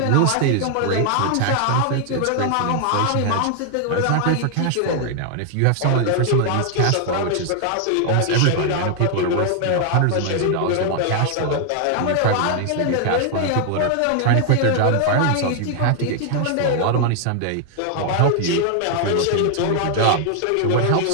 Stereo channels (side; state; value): both; different; correlation 0.00